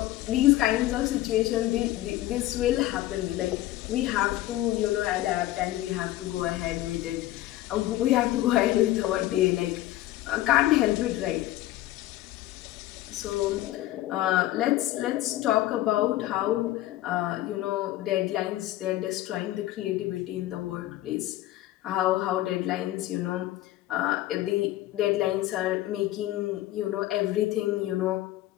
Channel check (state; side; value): quieter; right; 15.5 dB